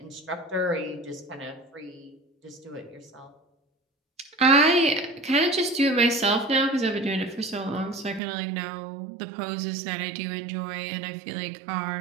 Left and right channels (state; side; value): drops out; left; at 8.2 s